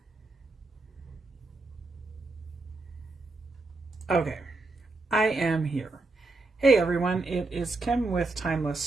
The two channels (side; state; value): left; quieter; 3.3 dB